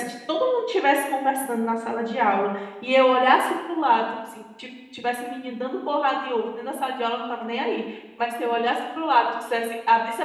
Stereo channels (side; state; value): both; identical; correlation 1.00